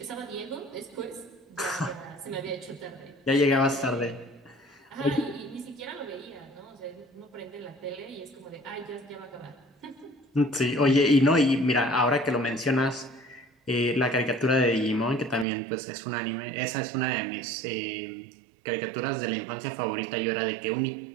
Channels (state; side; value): drops out; left; at 15.5 s